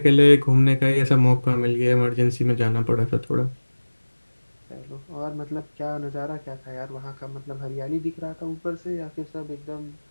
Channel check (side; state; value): both; inverted; correlation -1.00